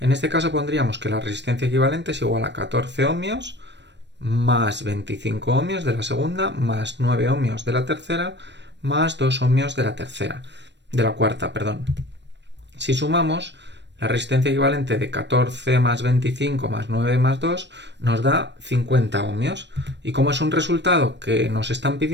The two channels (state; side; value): late; left; 0.51 ms